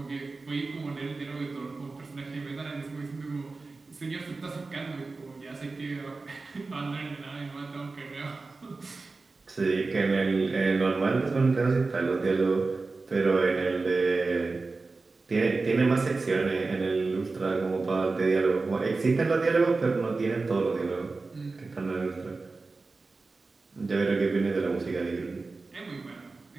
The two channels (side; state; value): left; quieter; 3.8 dB